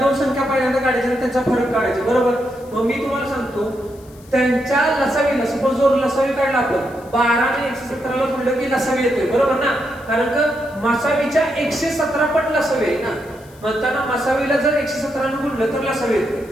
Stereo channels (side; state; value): left; noise; hiss, 26 dB below the sound